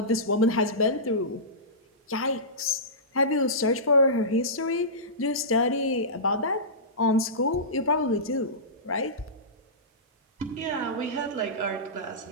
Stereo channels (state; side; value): normal; both; correlation -0.19